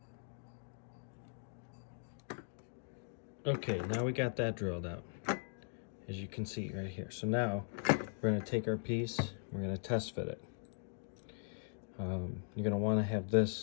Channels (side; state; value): right; silent; digital silence